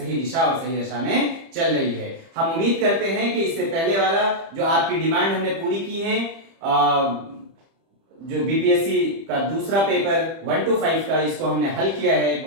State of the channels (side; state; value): left; late; 30 ms